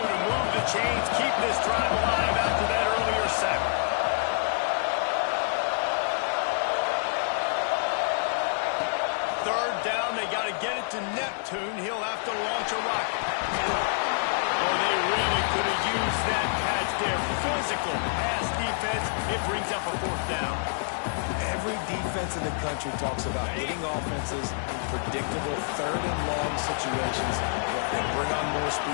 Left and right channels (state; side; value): silent; right; digital silence